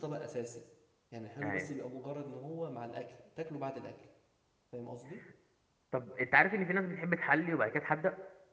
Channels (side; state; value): both; identical; correlation 1.00